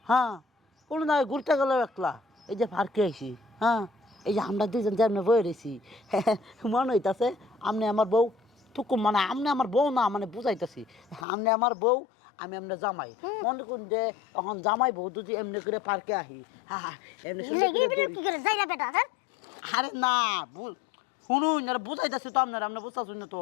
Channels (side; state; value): right; drops out; at 11.2 s